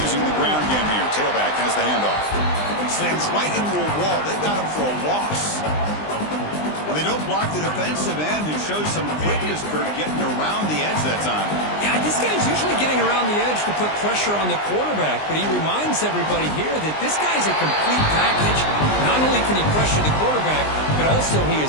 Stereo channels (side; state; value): right; late; 20 ms